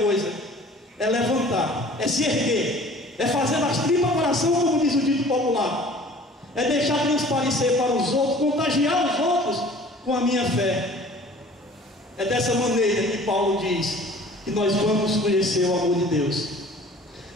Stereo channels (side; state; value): both; normal; correlation 0.48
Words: é levantar, é se erguer, é fazer das tripas coração, como diz o dito popular, é deixar transparecer para os outros, contagiar os outros com a minha fé. É dessa maneira que Paulo diz que nós vamos conhecer o amor de Deus.